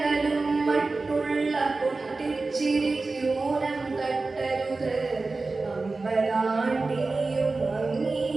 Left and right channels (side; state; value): left; quieter; 3.6 dB